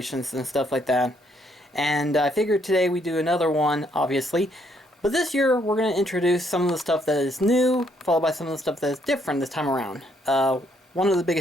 and stuff like that. And I figured today we do another one, obviously. But this year, we're going to introduce some of the stuff that is new, followed by some of the stuff that is different this time around. One of the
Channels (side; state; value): both; normal; correlation 0.71